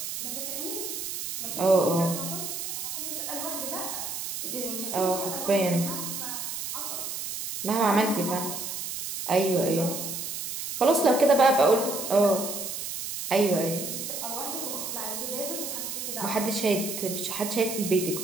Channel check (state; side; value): noise; right; hiss, 5 dB below the sound